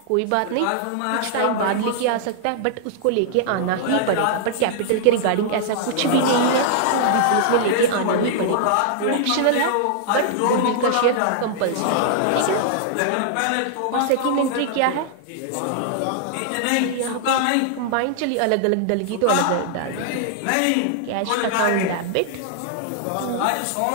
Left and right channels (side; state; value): both; different; correlation -0.01